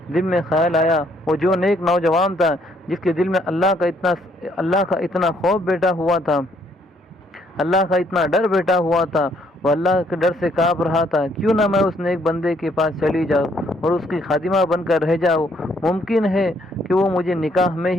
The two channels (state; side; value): normal; both; correlation 0.68